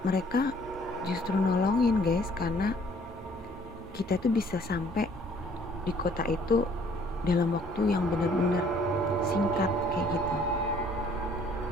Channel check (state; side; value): normal; both; correlation 0.59